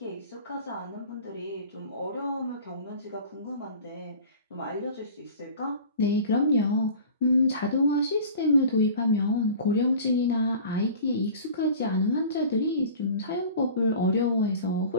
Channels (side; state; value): both; inverted; correlation -0.41